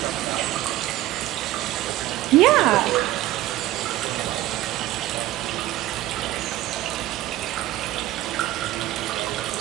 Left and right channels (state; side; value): quieter; left; 15.6 dB